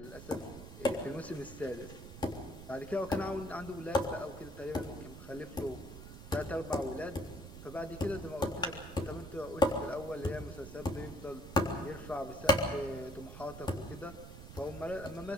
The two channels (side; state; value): right; noise; rumble, 12 dB below the sound